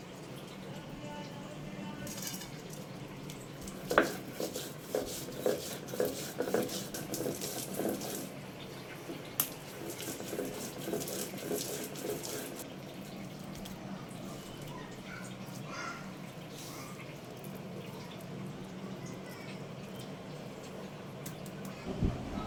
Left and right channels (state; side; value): identical; both; correlation 1.00